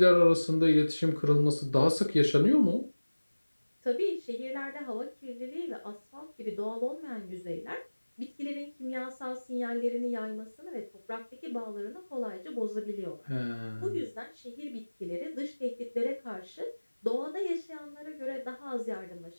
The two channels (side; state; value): both; inverted; correlation -1.00